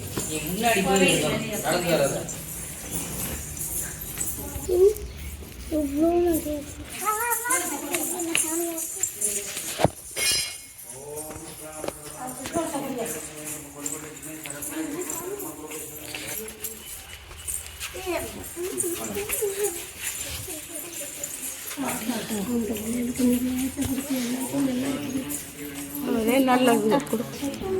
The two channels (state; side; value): identical; both; correlation 1.00